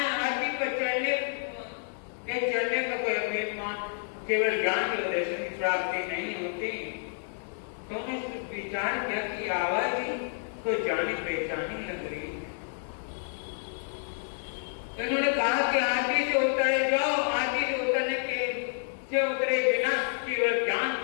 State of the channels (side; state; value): right; silent; 58 dB below the other